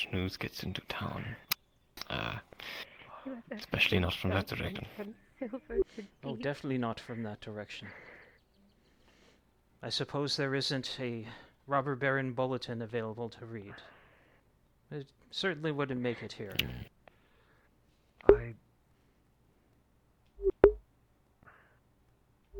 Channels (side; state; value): both; identical; correlation 1.00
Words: news gets into town. Especially not from that direction. Oh, definitely not from that direction. I suppose there isn't a robber baron bulletin available to read. It certainly wouldn't make it here.